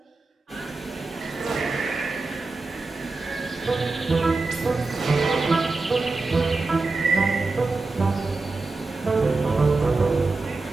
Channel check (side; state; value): left; quieter; 3.6 dB